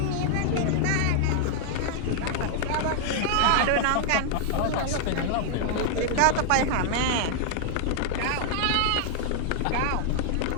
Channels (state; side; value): different; both; correlation -0.01